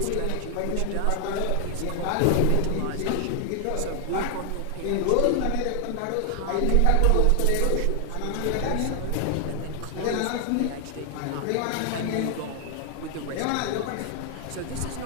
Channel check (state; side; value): different; both; correlation 0.00